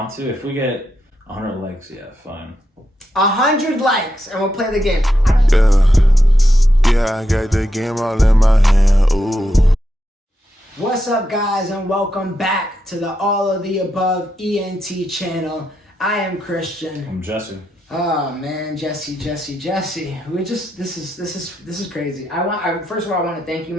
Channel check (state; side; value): normal; both; correlation 0.84